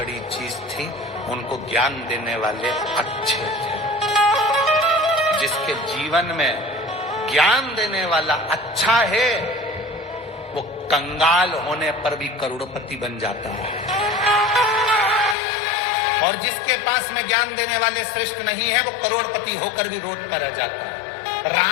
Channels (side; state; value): right; drops out; at 15.4 s